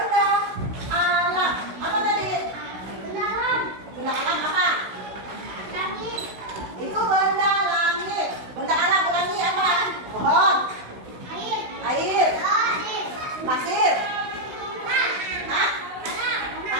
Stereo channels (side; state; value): left; late; 16 ms